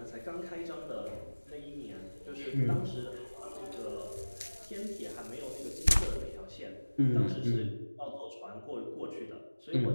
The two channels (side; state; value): both; inverted; correlation -1.00